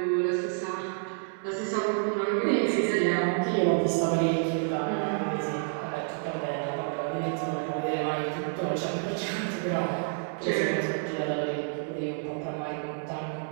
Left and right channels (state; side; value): silent; left; digital silence